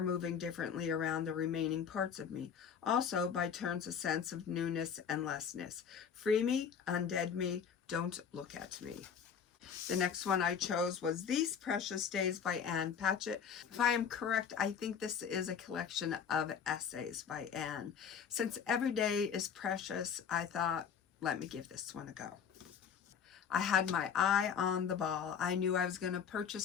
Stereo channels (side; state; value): right; quieter; 7.3 dB